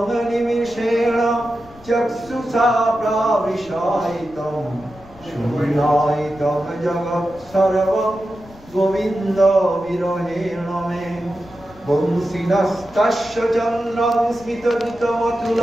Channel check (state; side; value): noise; left; rumble, 22 dB below the sound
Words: নিমিষেণ চক্ষুষা প্রাবিশায়িতং শূন্যায়িতং জগৎ সর্বং গোবিন্দ বিরহেণ মে বংশীনস্তস্য চন্দ্রং